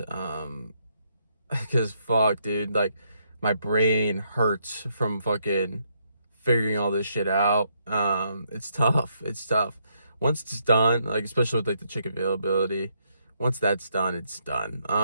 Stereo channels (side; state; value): both; inverted; correlation -0.75